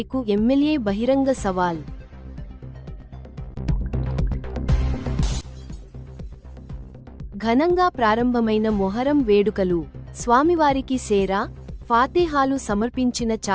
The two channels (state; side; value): identical; both; correlation 1.00